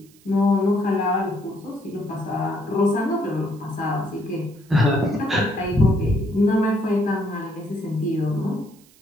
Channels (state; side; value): noise; right; hiss, 28 dB below the sound